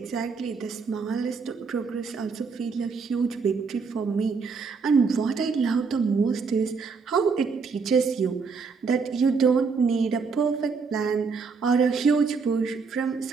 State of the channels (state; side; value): quieter; left; 5.1 dB